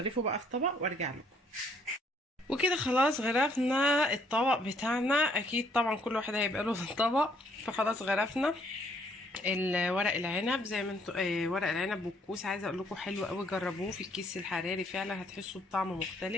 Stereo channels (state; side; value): normal; both; correlation 0.65